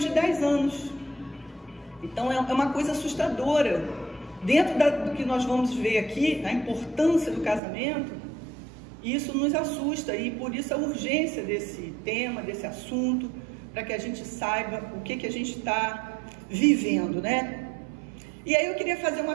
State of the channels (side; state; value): left; drops out; at 7.6 s